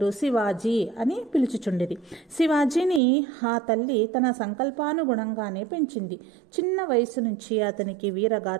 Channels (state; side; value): drops out; left; at 3.0 s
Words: శివాజీ అని పిలుచుచుండిరి. శివాజీని ఆ తల్లి తన సంకల్పానుగుణంగానే పెంచింది. చిన్న వయసు నుంచి అతనికి